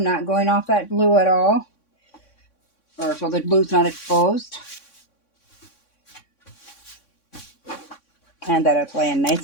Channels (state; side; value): late; right; 3.6 ms